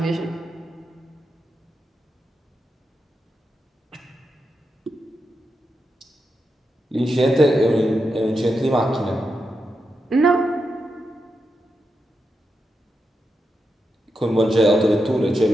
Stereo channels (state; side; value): normal; both; correlation 0.87